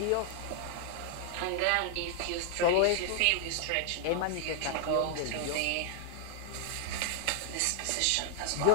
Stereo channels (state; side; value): different; both; correlation -0.01